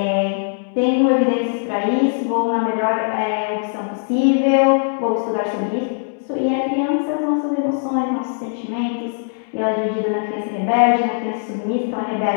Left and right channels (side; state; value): right; silent; digital silence